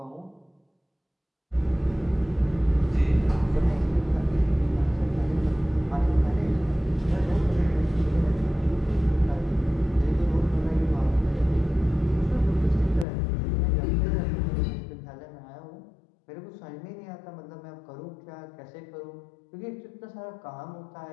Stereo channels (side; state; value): right; drops out; at 13.1 s